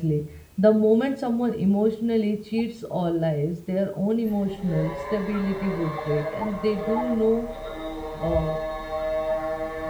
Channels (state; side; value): identical; both; correlation 1.00